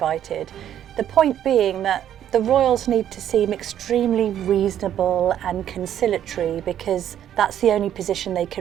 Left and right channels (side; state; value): left; quieter; 10.6 dB